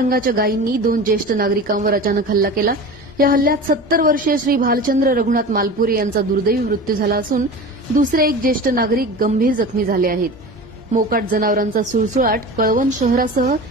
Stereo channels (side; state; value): both; normal; correlation 0.33